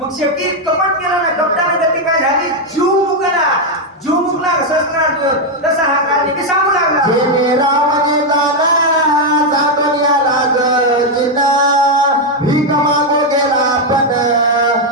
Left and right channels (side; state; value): both; normal; correlation 0.02